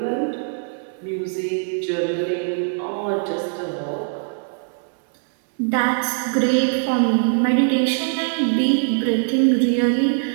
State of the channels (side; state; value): left; silent; 61 dB below the other